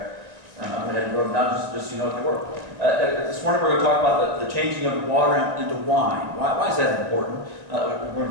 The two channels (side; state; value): left; late; 1.9 ms